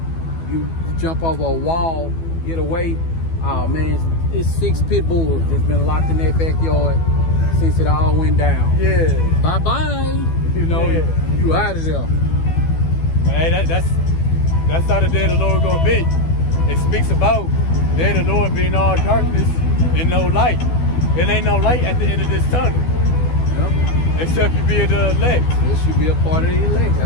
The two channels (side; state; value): right; late; 12 ms